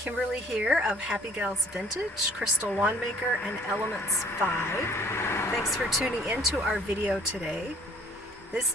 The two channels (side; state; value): both; normal; correlation 0.55